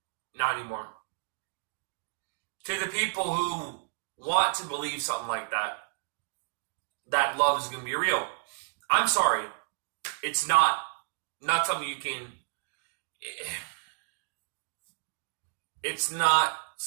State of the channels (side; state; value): left; silent; digital silence